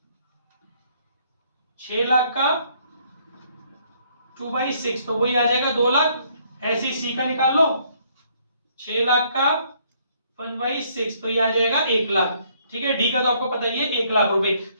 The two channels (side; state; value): both; inverted; correlation -0.66